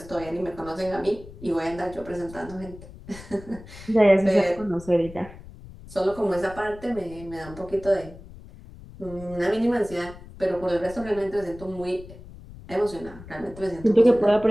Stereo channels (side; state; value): left; noise; rumble, 17 dB below the sound